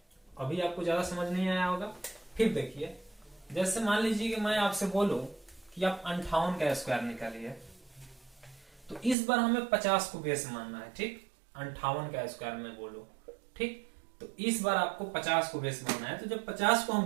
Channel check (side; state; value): left; drops out; at 9.2 s